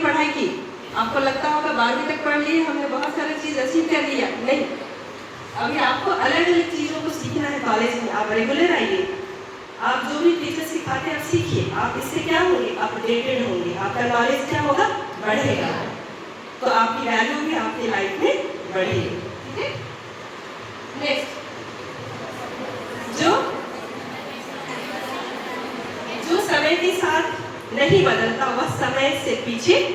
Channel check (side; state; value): both; identical; correlation 1.00